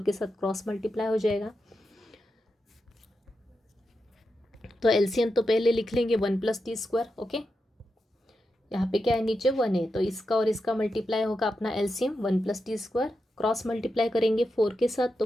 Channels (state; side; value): normal; both; correlation 0.88